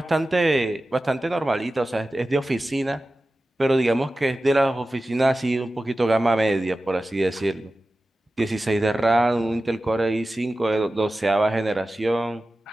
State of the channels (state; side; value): normal; both; correlation 0.95